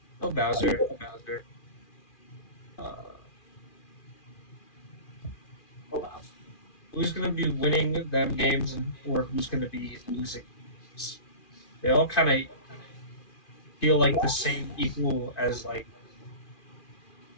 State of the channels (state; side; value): late; right; 2.4 ms